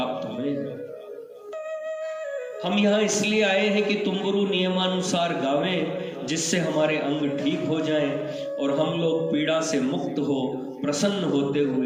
हुए हैं। हम यहाँ इसलिए आए हैं कि तुम्बरु नियमानुसार गावें, जिससे हमारे अंग ठीक हो जाएं और हम लोग पीड़ा से मुक्त हो प्रसन्न होते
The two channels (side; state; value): both; identical; correlation 1.00